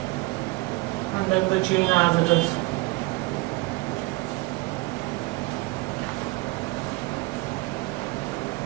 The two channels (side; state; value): left; quieter; 23.2 dB